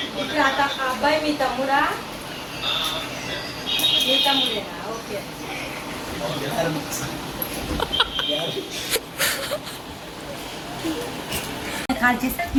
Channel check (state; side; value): identical; both; correlation 1.00